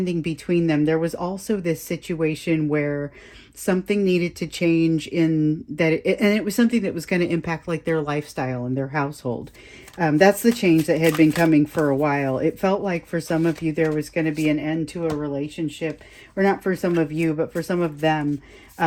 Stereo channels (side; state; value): both; identical; correlation 1.00